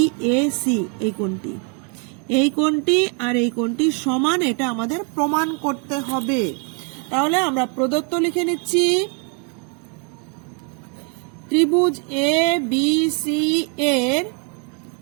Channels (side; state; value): left; quieter; 37.6 dB